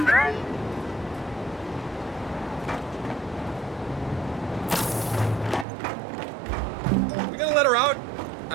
We gonna let her out?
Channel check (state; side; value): drops out; left; at 5.7 s